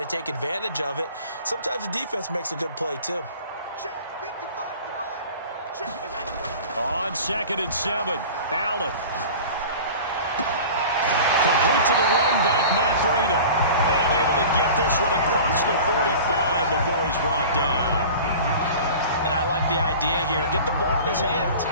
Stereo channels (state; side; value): inverted; both; correlation -0.39